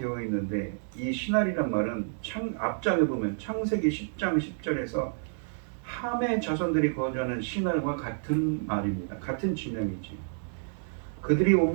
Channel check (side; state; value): left; silent; digital silence